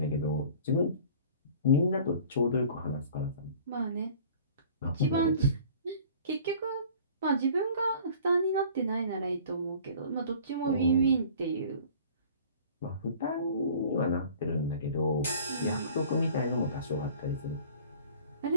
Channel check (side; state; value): both; inverted; correlation -0.48